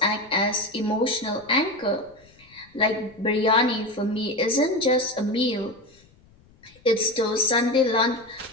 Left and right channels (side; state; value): left; noise; rumble, 29 dB below the sound